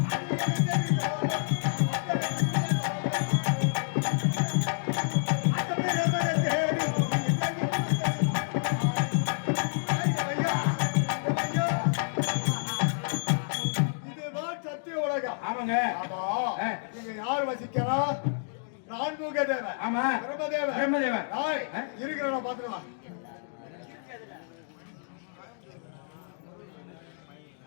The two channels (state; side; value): silent; right; digital silence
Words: இதுதான் சத்திய உலகம். ஆமாங்க. ஆமா. ஆ. இங்க யார் வசிக்கிறா? நான்முக தேவன். ஆமா. பிரம்மதேவன். பிரம்மதேவன். டேய், ஆ? இருக்கிறவன பாத்துட்டு வா.